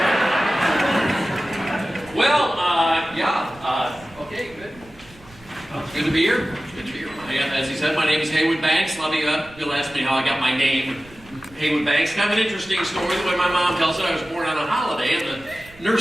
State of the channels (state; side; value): noise; right; rumble, 24 dB below the sound